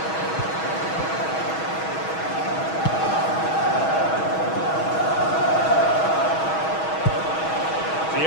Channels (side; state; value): right; late; 6.3 ms